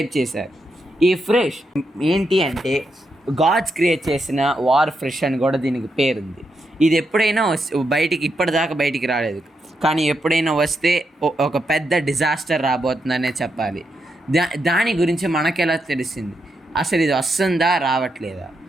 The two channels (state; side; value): normal; both; correlation 0.83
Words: చేశారు. ఈ ఫ్రెష్ ఏంటి అంటే గాడ్స్ క్రియేట్ చేసిన వార్ ఫ్రెష్ అని కూడా దీనికి పేరుంది. ఇది ఎప్పుడైనా బయటికి ఇప్పటిదాకా బయటికి రాలేదు, కానీ ఎప్పుడైనా వస్తే ఒక పెద్ద డిజాస్టర్ రాబోతుందనే చెప్పాలి. దాని గురించి మనకెలా తెలిసింది? అసలు ఇది వస్తుందా రావట్లేదా?